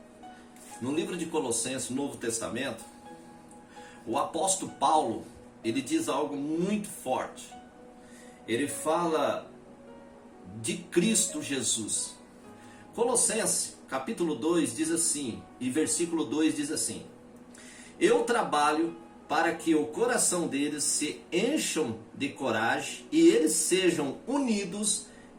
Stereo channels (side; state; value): both; identical; correlation 1.00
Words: no livro de Colossenses, Novo Testamento, o apóstolo Paulo, ele diz algo muito forte. Ele fala de Cristo Jesus. Colossenses, capítulo 2, diz assim, e versículo 2 diz assim: eu trabalho para que o coração deles se encham de coragem e eles sejam unidos